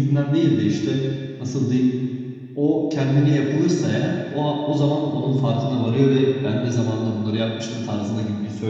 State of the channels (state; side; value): identical; both; correlation 1.00